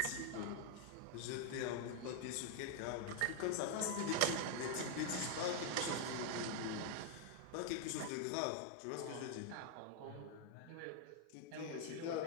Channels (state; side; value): different; both; correlation 0.00